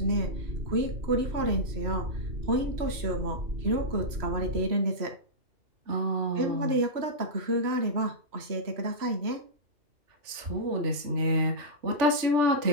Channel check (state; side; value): late; left; 3.0 ms